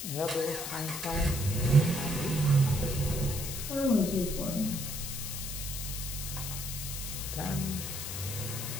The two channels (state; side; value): noise; left; hiss, 6 dB below the sound